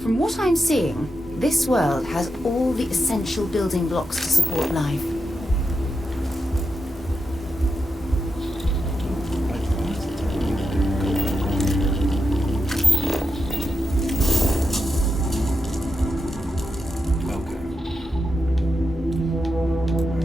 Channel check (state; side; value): normal; both; correlation 0.87